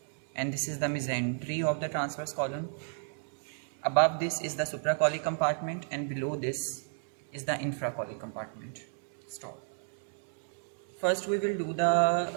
and this is the mesentery of the transverse column. Above this is the supracolic compartment and below this is the infracolic compartment. Stop. First we will do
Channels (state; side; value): silent; left; 56 dB below the other